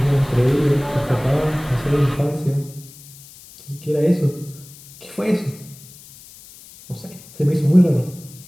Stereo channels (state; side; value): noise; left; hiss, 20 dB below the sound